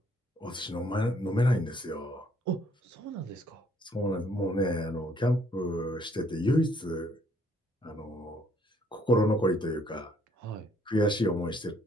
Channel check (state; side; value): normal; both; correlation 0.65